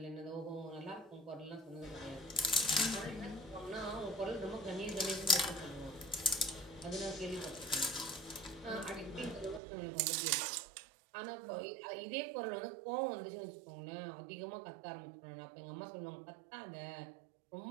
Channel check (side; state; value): left; drops out; at 9.6 s